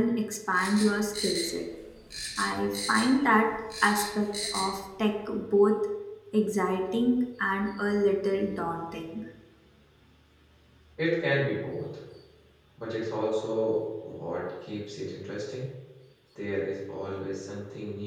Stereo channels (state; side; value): identical; both; correlation 1.00